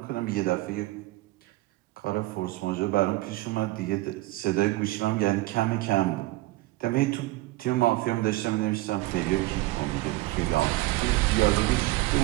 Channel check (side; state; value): left; quieter; 19.1 dB